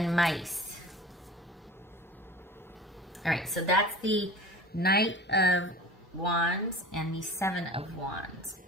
mice. All right, so that's the Knight of Wands and the 7 of Wands.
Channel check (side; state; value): both; normal; correlation 0.39